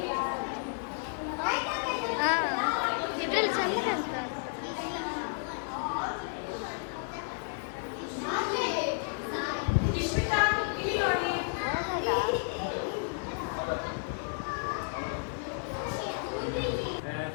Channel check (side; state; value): right; silent; 56 dB below the other